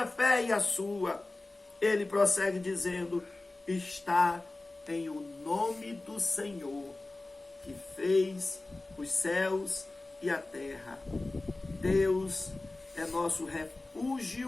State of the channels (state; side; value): quieter; right; 3.0 dB